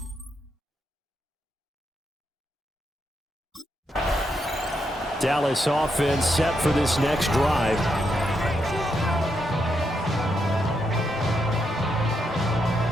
Dallas offense set for this next drive.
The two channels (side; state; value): both; normal; correlation 0.81